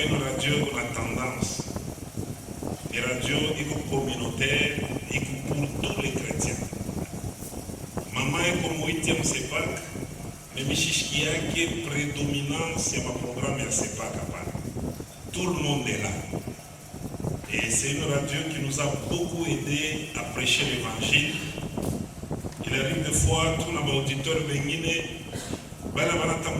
une radio qu'on a tendance. Une radio communautaire et pour tous les chrétiens. Maman est comme 8e CEPAC, mais Michichkia qui est prédominant sur ma programme à CEPAC. Tout le monde est là. Et c'est une radio qui nous a beaucoup aidé à prêcher l'évangile. Il arrive des fois, tout nos auditeurs viennent, moi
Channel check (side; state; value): both; identical; correlation 1.00